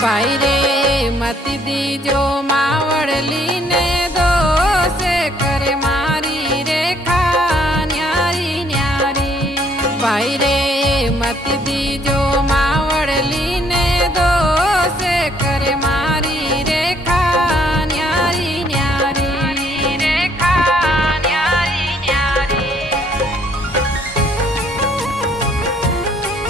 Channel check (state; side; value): normal; both; correlation 0.65